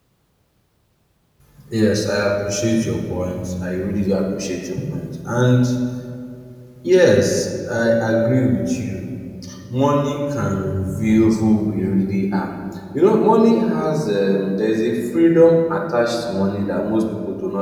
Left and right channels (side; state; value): both; identical; correlation 1.00